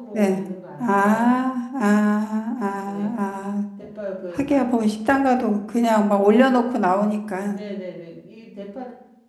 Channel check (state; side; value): identical; both; correlation 1.00